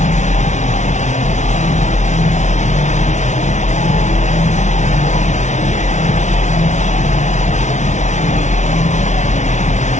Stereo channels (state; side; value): late; right; 0.34 ms